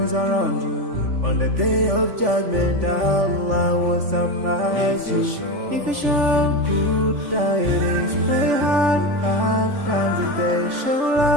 around you. On the day of judgment, Allah will surprise you. If you show good tidings, pray hard 5 times a day. Show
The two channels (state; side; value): late; left; 3.5 ms